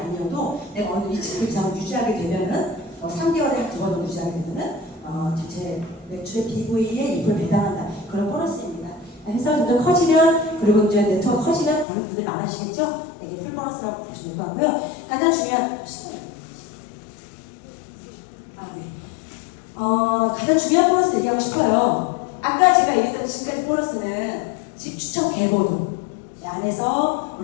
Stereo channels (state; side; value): drops out; right; at 11.9 s